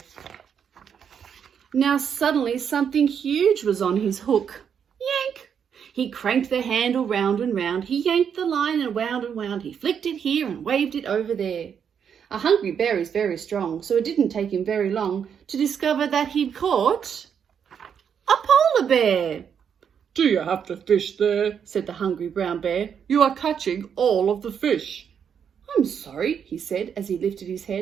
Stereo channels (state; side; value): quieter; left; 7.6 dB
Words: Now suddenly something huge was on his hook. Yank! He cranked the handle round and round. He yanked the line and wound and wound. He flicked it here and waved it over there. A hungry bear is very strong, so it didn't take him very long to discover that he'd caught a polar bear. "Do you have the fish there?" said the hungry brown bear. "You are catching all of the fish." "I'm sorry," he said as he lifted his